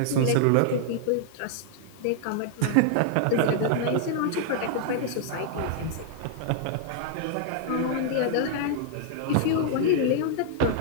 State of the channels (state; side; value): different; both; correlation -0.01